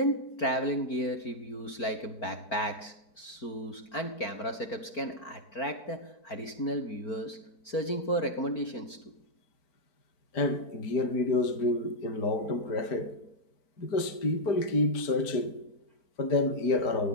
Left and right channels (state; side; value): late; right; 4.5 ms